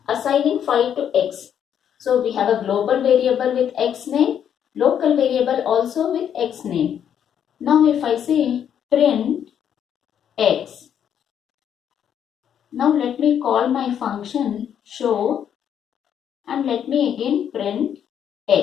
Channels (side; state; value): right; quieter; 9.0 dB